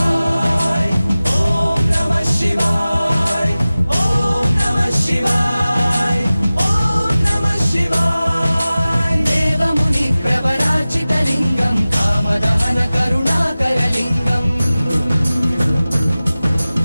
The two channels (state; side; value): inverted; both; correlation -0.97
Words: ॐ नमः शिवाय ॐ नमः शिवाय ॐ नमः शिवाय देवमुनि प्रवरार्चितलिङ्गं कामदहन करुणाकरलिङ्गम्